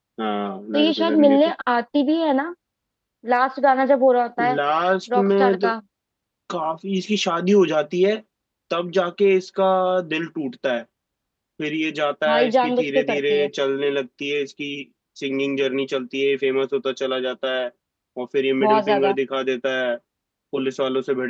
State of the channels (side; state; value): both; identical; correlation 1.00